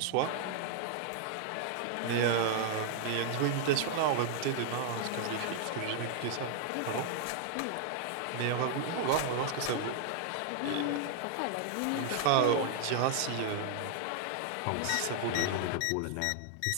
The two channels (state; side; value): different; both; correlation 0.00